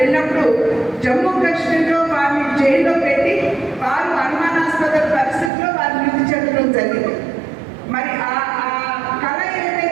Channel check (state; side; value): drops out; left; at 5.5 s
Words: జమ్మూ కాశ్మీర్లో వారిని జైల్లో పెట్టి వారు అనుమానాస్పద పరిస్థితుల్లో వారు మృతి చెందడం జరిగింది. మరి ఆ కళ